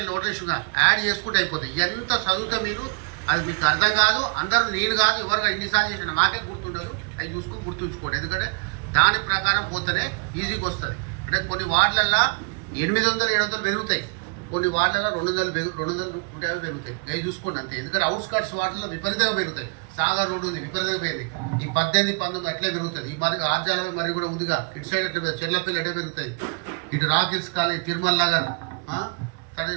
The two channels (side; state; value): left; quieter; 36.6 dB